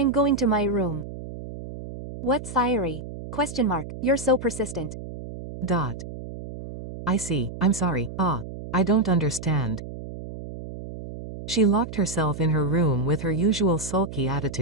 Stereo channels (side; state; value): right; noise; hum, 11 dB below the sound